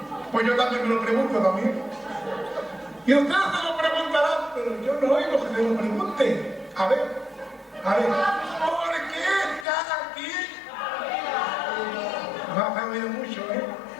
Pues yo también me lo pregunto también. Y ustedes se lo preguntarán, pero yo no oigo que se lo pregunten. A ver, ¿por qué está aquí? No has oído mucho, ¿eh?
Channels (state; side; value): drops out; right; at 9.7 s